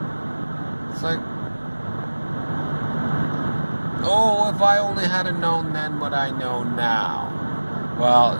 It's like, if I only had known then what I know now. Well,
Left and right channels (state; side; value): inverted; both; correlation -1.00